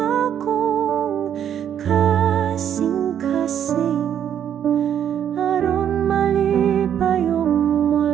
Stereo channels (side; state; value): left; quieter; 9.4 dB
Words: akong kasing-kasing, aron malipayong